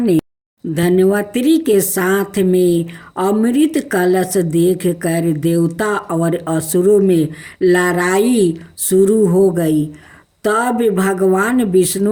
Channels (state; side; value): identical; both; correlation 1.00